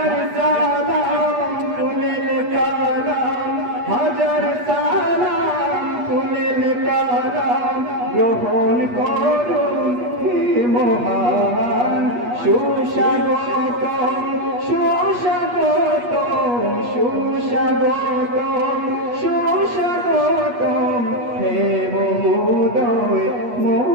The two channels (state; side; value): late; left; 8.3 ms